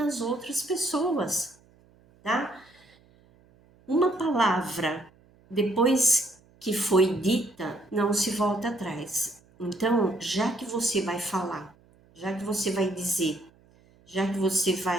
outras pessoas, tá? Uma palavra, depois que foi dita, não se volta atrás. Então, já que você vai falar, já que você vai dizer, já que você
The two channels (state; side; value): noise; right; hum, 30 dB below the sound